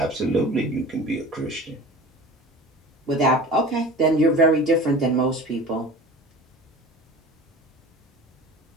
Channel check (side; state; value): both; normal; correlation 0.38